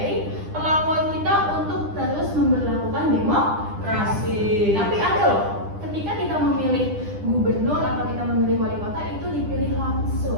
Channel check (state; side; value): late; left; 10 ms